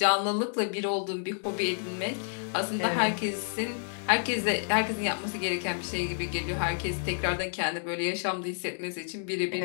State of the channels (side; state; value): right; silent; digital silence